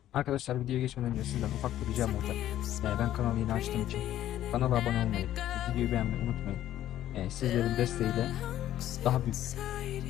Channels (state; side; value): quieter; right; 12.6 dB